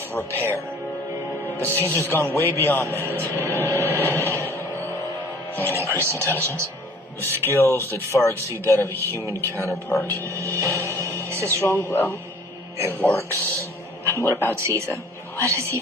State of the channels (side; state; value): both; normal; correlation 0.51